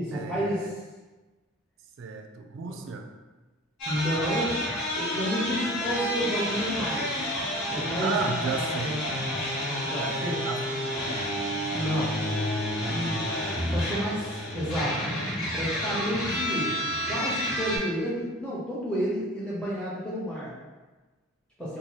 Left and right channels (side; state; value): both; normal; correlation 0.41